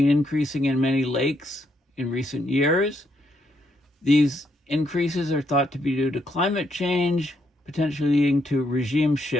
increasing in many lakes in recent years. These increases are thought to be due to climate change, potentially leading to regime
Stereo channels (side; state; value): both; normal; correlation 0.76